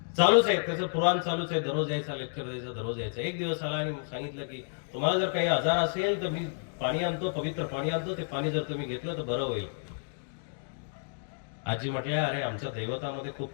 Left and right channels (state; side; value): silent; right; digital silence